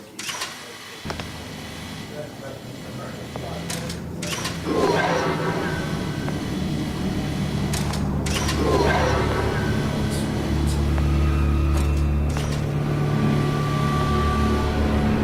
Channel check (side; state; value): both; identical; correlation 1.00